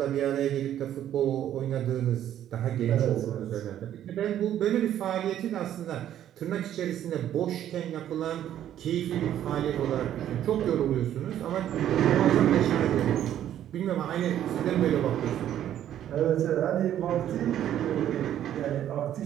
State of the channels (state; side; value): quieter; left; 11.2 dB